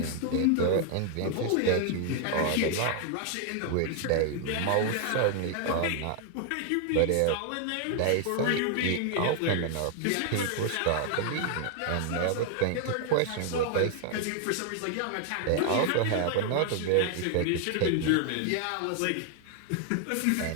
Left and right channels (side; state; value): both; different; correlation 0.00